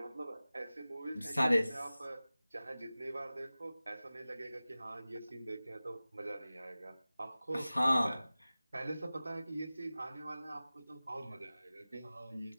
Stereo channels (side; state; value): both; inverted; correlation -0.97